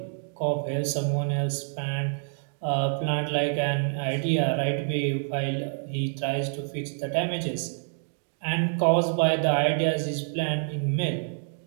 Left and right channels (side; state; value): left; silent; digital silence